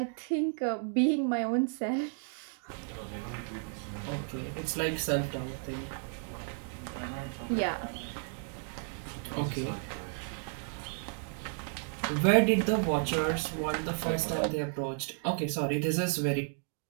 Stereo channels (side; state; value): left; silent; 56 dB below the other